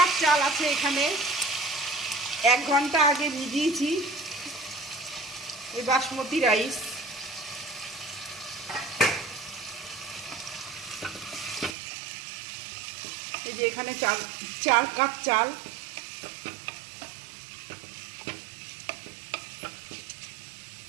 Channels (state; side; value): drops out; left; at 11.8 s